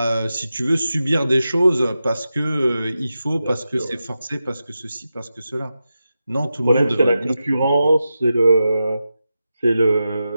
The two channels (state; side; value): inverted; both; correlation -0.91